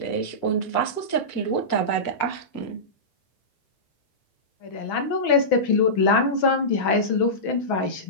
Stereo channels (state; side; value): late; right; 6.1 ms